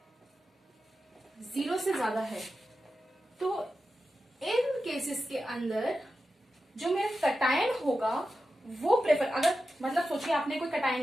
0 से ज्यादा है, तो इन केसेस के अंदर जो मेरा कटायन होगा वो प्रेफर, अगर मतलब सोचिए आपने कोई कटायन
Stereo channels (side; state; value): both; normal; correlation 0.91